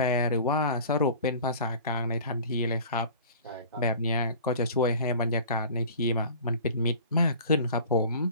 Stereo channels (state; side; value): inverted; both; correlation -0.43